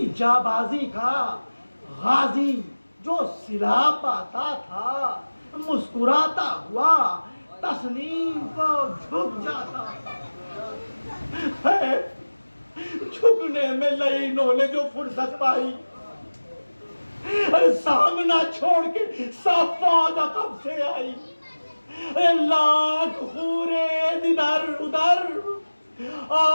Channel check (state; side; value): inverted; both; correlation -1.00